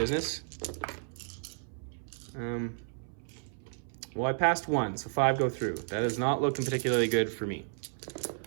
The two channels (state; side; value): silent; left; 56 dB below the other